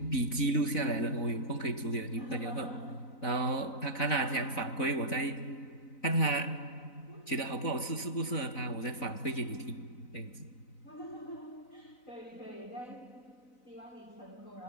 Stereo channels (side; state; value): right; late; 4.0 ms